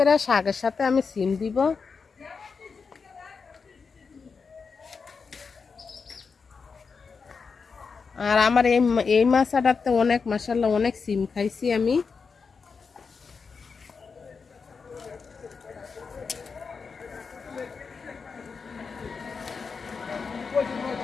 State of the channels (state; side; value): quieter; right; 5.2 dB